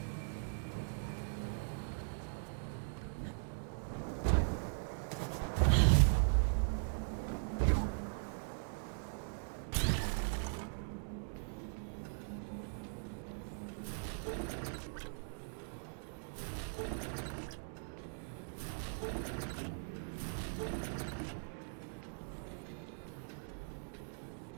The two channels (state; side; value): silent; left; digital silence